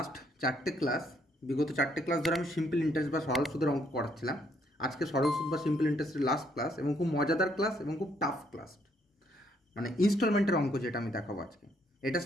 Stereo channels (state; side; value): normal; both; correlation 0.70